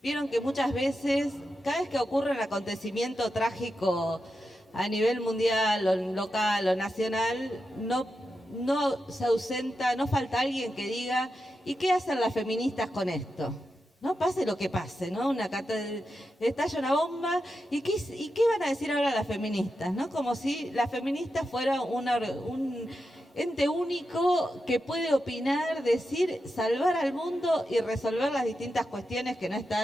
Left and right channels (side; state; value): both; normal; correlation 0.89